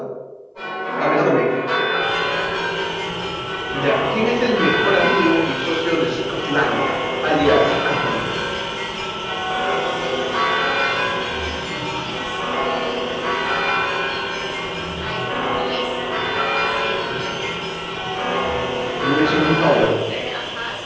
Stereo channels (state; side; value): identical; both; correlation 1.00